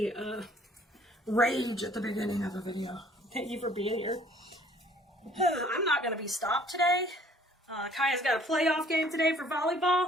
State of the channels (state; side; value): normal; both; correlation 0.57